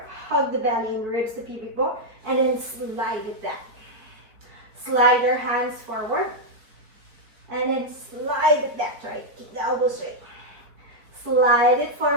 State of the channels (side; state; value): left; late; 4.7 ms